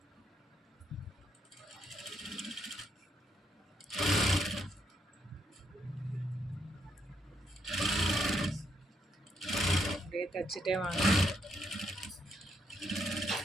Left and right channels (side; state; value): both; normal; correlation 0.76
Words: அப்படியே தச்சுட்டே வாங்க.